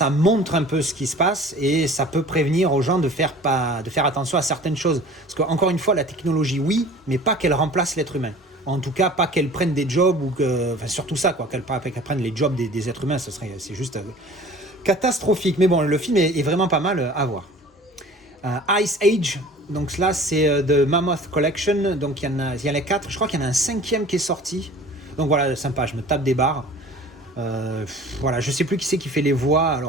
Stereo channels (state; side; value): normal; both; correlation 0.45